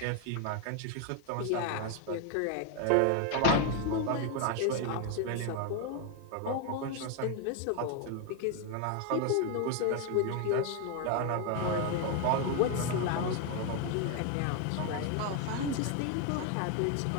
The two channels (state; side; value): different; both; correlation 0.01